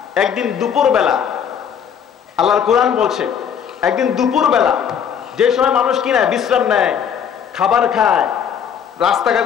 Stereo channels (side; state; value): right; quieter; 8.0 dB